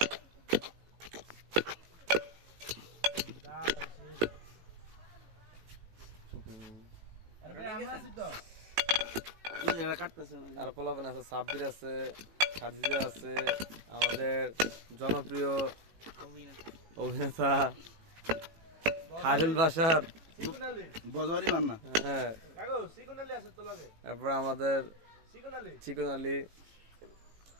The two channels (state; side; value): late; left; 18 ms